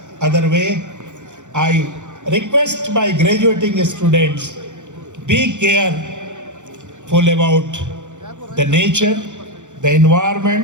way. I request my graduating students, be careful about the nature, the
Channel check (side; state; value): left; late; 0.85 ms